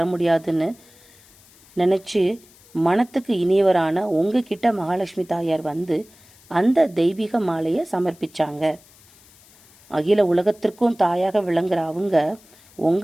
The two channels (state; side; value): noise; left; hiss, 27 dB below the sound